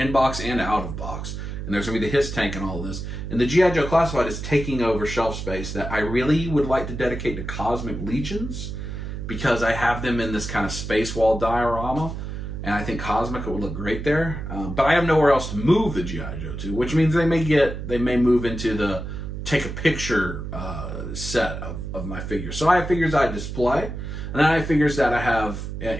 box and out of box. And there's going to be the Hiss tank and all of this. And the G.I. Joe Classified is taking over shelf space that I really would like to dedicate to Cosmic Legions, because I have them in this kind of space wall diorama. And I think Cosmic would look great there. But I have nowhere else to move the G.I. Joe to, which means they may move into the take a picture set of my figures. So I have figures I display. And then I have figures that I have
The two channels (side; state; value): right; noise; hum, 6 dB below the sound